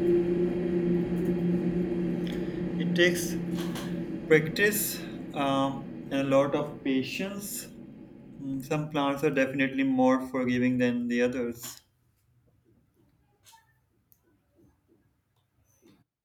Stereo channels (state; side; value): identical; both; correlation 1.00